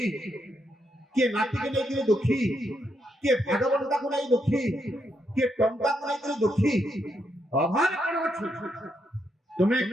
କିଏ ନାତିକୁ ନେଇକରି ଦୁଃଖୀ, କିଏ ଭାଗବନ୍ତାକୁ ନେଇ ଦୁଃଖୀ, କିଏ ଟଙ୍କାକୁ ନେଇକରି ଦୁଃଖୀ। ଅଭାବ କଣ ଅଛି? ତୁମେ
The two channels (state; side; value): normal; both; correlation 0.79